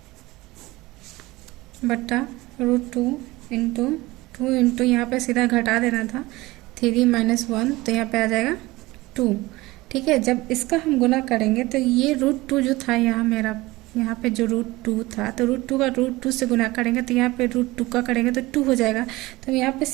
बट्टा √2 इंटू 2 इंटू यहाँ पे सीधा घटा देना था, 3 - 1, तो यहाँ पे आ जाएगा 2। ठीक है, जब इसका हम गुना करेंगे तो ये √2 जो था यहाँ पे जो √2 था, तो √2 का √2 से गुना करेंगे तो यहाँ पे √2 का करेंगे तो 2 हो जाएगा। तो यहाँ पे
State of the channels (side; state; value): left; quieter; 20.2 dB